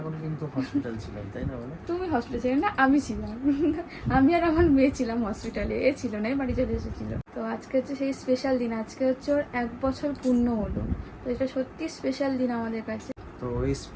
কিন্তু হসপিটাল ছিলাম, তাই না? বলো তুমি হসপিটালে ছিলে না, আমি ছিলাম। আমি আর আমার মেয়ে ছিলাম হসপিটালে, এ ছিল না, বাড়ি চলে এসেছিল। তো আজকে হচ্ছে সেই স্পেশাল দিন, আজকে হচ্ছে ওর 1 বছর পূর্ণ হলো। তো এটা সত্যি স্পেশাল দিন আমাদের কাছে। তো এই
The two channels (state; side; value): identical; both; correlation 1.00